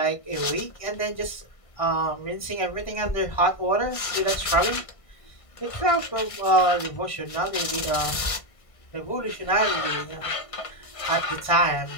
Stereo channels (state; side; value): late; right; 1.5 ms